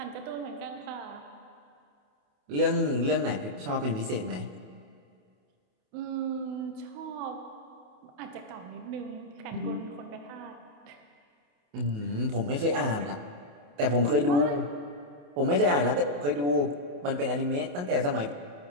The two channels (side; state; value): left; late; 28 ms